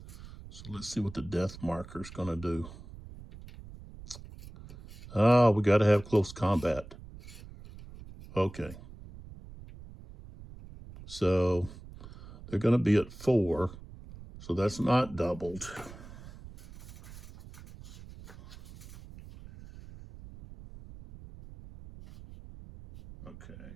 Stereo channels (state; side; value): noise; right; rumble, 16 dB below the sound